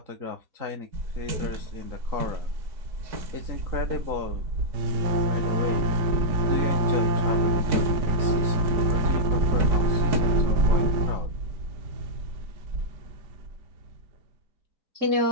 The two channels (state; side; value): late; left; 5.0 ms